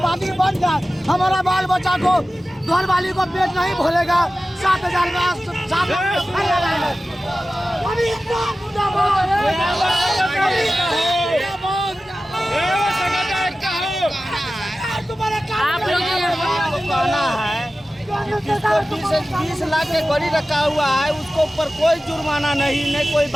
बन जाए, हमारा बाल बच्चा को घर वाली को पेट नहीं भोलेगा। 7,000 का 7 आप लोग कहना है जिसको 20 लाख के गड़ी रखा हुआ है उसको ऊपर कोई जुर्माना नहीं कोई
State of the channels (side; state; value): both; normal; correlation 0.95